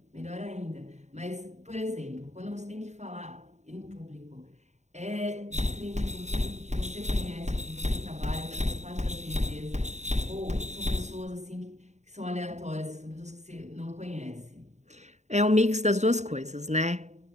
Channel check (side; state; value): left; late; 0.33 ms